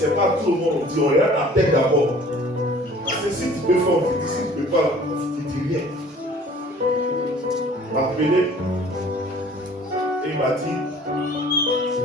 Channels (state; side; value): normal; both; correlation 0.51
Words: pas tout le monde. On dit, on regarde la tête d'abord. Parce que si tu peux faire, on te dit, si tu ne peux pas, on ne te dit rien. Il m'a appelé. Et il m'a dit,